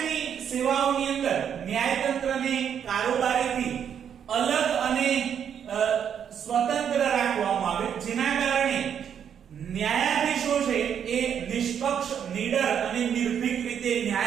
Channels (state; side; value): quieter; left; 8.4 dB